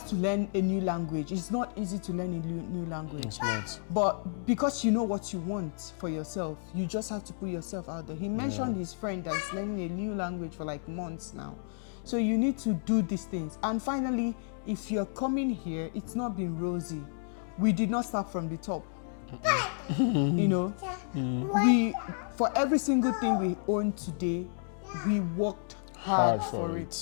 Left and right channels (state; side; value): silent; right; digital silence